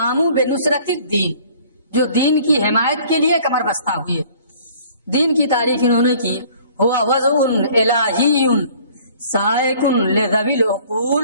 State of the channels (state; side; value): inverted; both; correlation -0.53